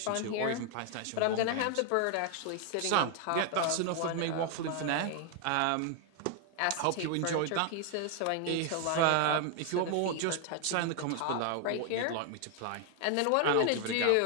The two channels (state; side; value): different; both; correlation 0.00